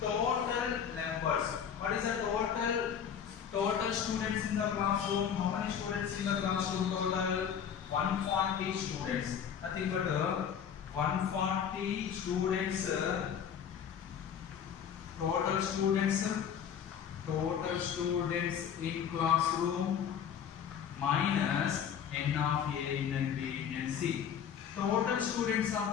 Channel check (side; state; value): right; quieter; 8.1 dB